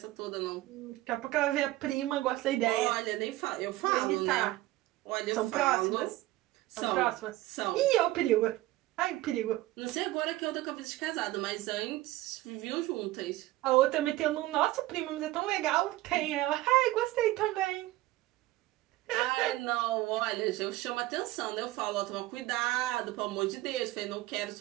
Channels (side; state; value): left; quieter; 17.3 dB